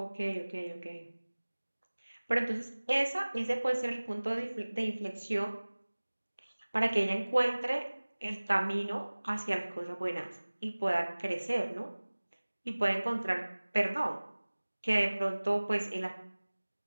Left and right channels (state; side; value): inverted; both; correlation -1.00